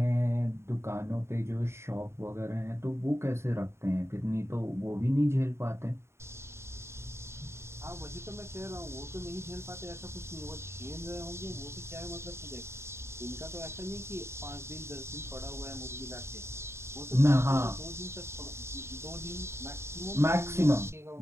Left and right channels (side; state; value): left; late; 0.13 ms